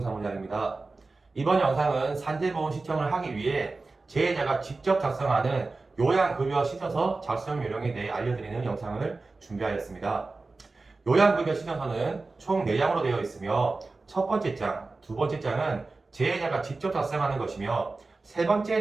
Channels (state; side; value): quieter; left; 3.6 dB